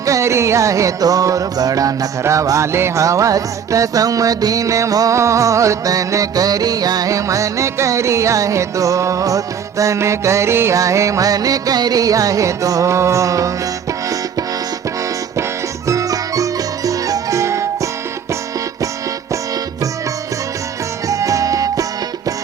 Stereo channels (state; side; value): quieter; left; 7.6 dB